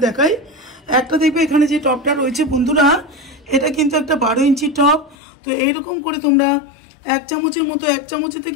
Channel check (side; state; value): right; drops out; at 5.2 s